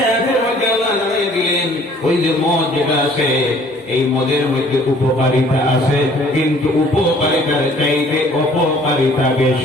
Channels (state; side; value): normal; both; correlation 0.56